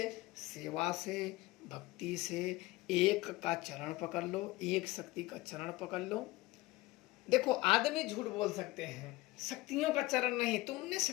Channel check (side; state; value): right; quieter; 19.7 dB